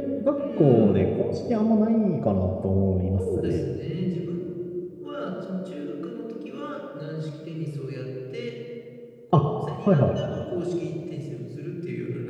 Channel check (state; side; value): identical; both; correlation 1.00